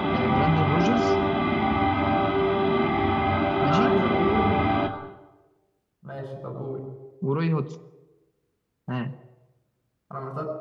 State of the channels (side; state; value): both; identical; correlation 1.00